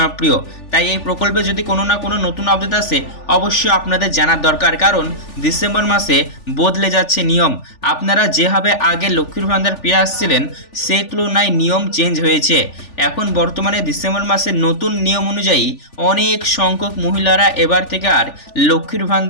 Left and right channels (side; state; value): right; late; 3.4 ms